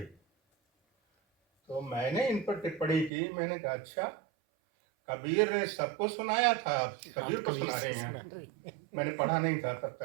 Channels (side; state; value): left; drops out; at 3.1 s